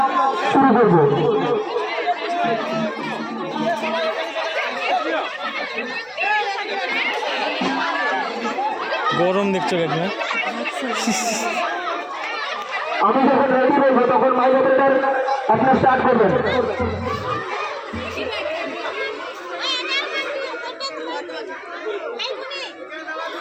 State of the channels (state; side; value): identical; both; correlation 1.00